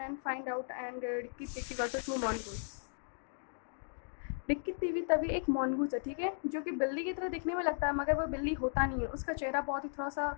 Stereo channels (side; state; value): right; silent; digital silence